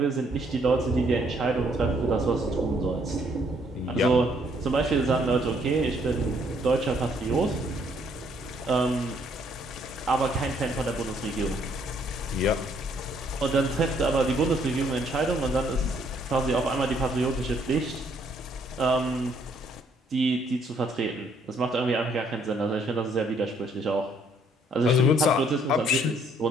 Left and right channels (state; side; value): normal; both; correlation 0.67